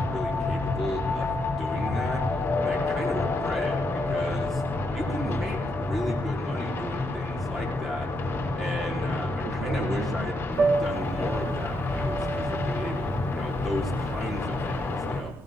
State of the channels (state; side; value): normal; both; correlation 0.79